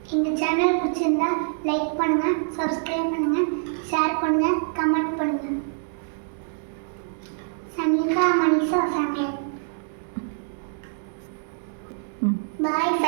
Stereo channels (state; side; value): silent; left; digital silence